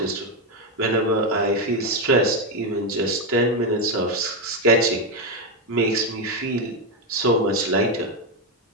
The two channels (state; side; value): normal; both; correlation 0.07